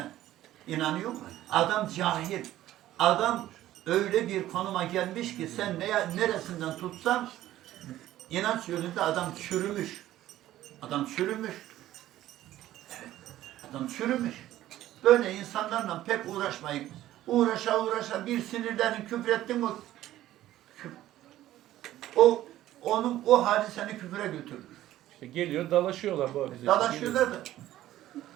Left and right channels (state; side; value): quieter; left; 14.0 dB